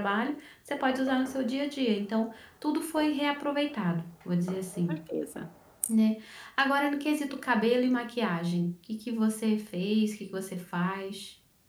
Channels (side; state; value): both; identical; correlation 1.00